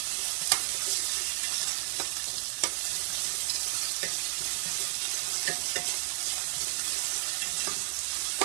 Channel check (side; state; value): left; silent; 57 dB below the other